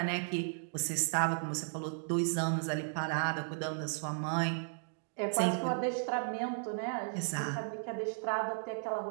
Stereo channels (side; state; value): left; silent; digital silence